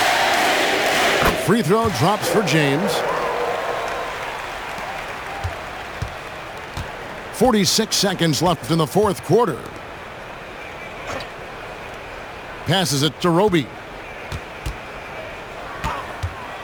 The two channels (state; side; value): identical; both; correlation 1.00